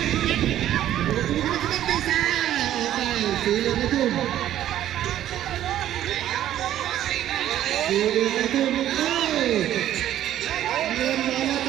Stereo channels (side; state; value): left; quieter; 12.1 dB